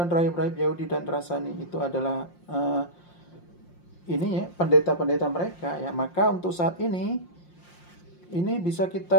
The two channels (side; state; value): right; late; 5.7 ms